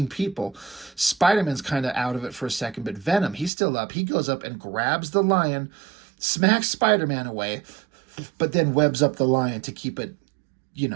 people. Spider-Man's kind of out of it for a second, but Venom, he's still up. He goes up and grabs the lion, smacks Spider-Man away, but then webs up the lion to keep it,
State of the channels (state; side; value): drops out; left; at 3.5 s